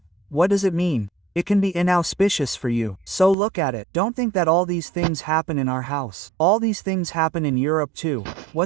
what does it mean? It can be inauspicious for you. So look at it. Don't think that all these things happen in our house. All these things happen in Europe too.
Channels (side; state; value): left; drops out; at 3.4 s